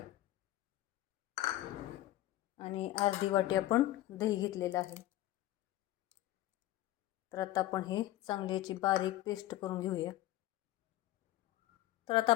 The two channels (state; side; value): quieter; right; 14.9 dB